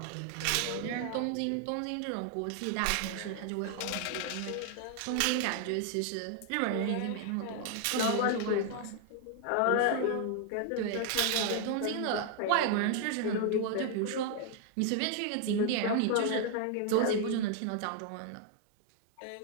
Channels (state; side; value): different; both; correlation 0.00